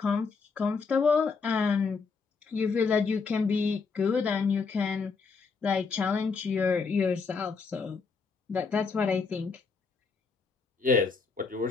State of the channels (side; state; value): right; quieter; 4.9 dB